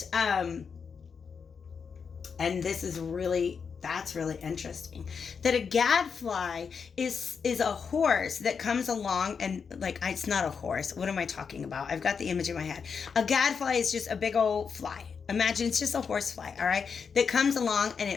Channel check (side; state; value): right; quieter; 6.0 dB